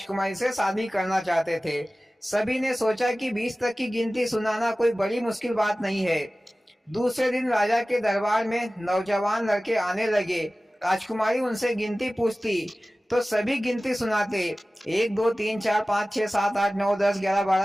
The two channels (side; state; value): both; normal; correlation 0.97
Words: से शादी करना चाहते थे। सभी ने सोचा कि 20 तक की गिनती सुनाना कोई बड़ी मुश्किल बात नहीं है। दूसरे दिन राजा के दरबार में नौजवान लड़के आने लगे। राजकुमारी उनसे गिनती पूछती तो सभी गिनती सुनाते। 1 2 3 4 5 6 7 8 9 10 11